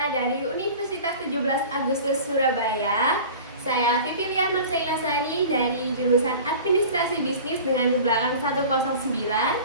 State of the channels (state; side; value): inverted; both; correlation -0.39